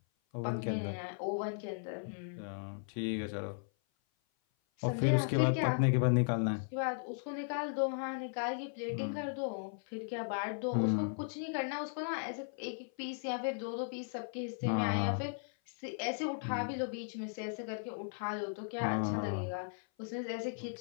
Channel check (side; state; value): right; silent; 53 dB below the other